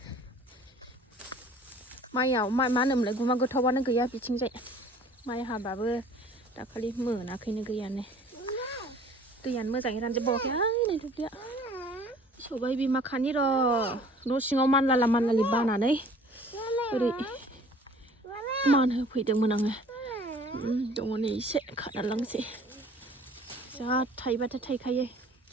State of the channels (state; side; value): normal; both; correlation 0.51